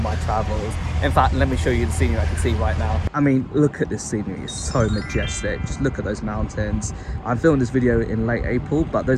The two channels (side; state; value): both; identical; correlation 1.00